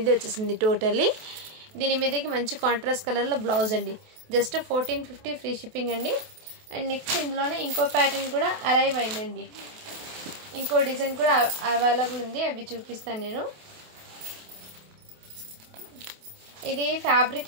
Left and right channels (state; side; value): late; left; 28 ms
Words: వచ్చేసింది టోటల్లీ. దీని మీదకి మంచి కాంట్రాస్ట్ కలర్లో బ్లౌజ్ అండి. జస్ట్ 1450 ఫ్రీ షిప్పింగ్ అండి. అండ్ నెక్స్ట్ ఇందులోనే ఇంకో ప్యాటర్న్ కూడా అరైవ్ అయిందండి. ఇంకో డిజైన్ కూడా అవైలబుల్ ఉంది, అవి చూపిస్తాను నేను. ఇది ఫ్యాబ్రిక్